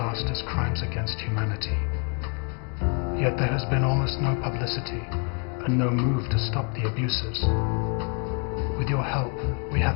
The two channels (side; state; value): right; quieter; 36.1 dB